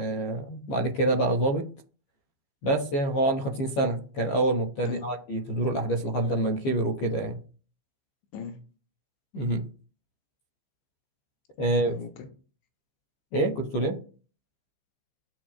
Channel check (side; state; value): right; late; 14 ms